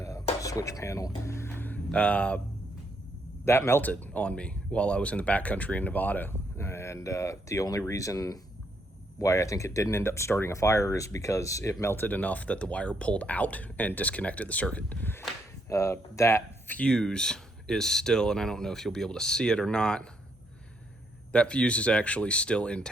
switch panel, that melted on me while I was in the backcountry in Nevada. And the only reason why I think it didn't end up starting a fire is because it melted enough that the wire pulled out and disconnected the circuit. That fuse is still, and I don't know if you'll be able to see it or not, that fuse is actually still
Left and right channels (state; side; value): normal; both; correlation 0.74